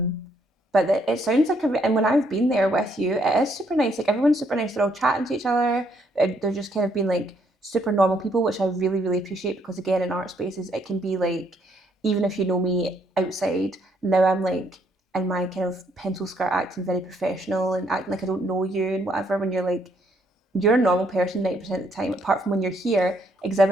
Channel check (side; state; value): both; normal; correlation 0.70